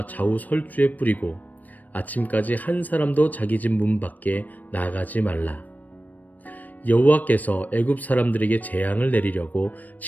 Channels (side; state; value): right; late; 0.081 ms